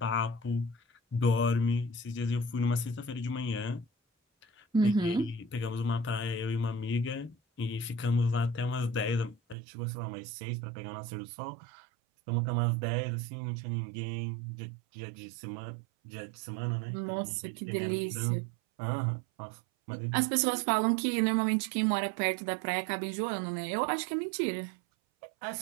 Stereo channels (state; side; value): drops out; left; at 9.6 s